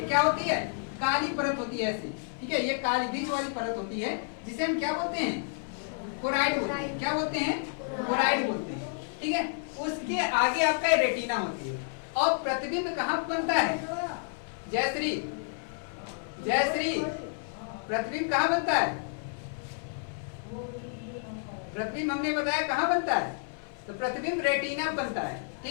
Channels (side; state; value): right; silent; 55 dB below the other